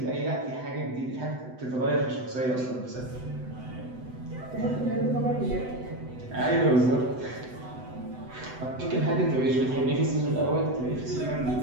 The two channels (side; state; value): left; late; 7.9 ms